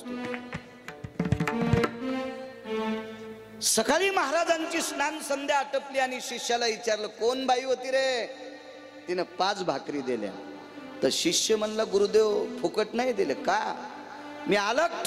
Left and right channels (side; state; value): both; identical; correlation 1.00